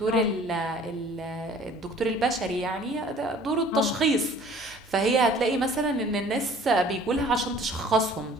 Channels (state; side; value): normal; both; correlation 0.51